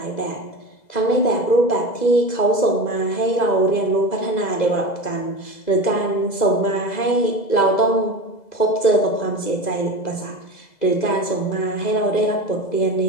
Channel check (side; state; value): right; late; 2.0 ms